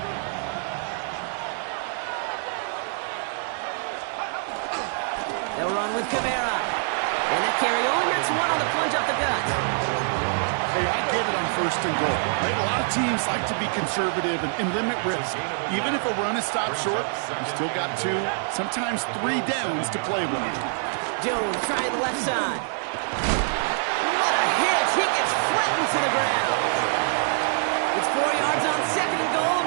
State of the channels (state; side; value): silent; left; 62 dB below the other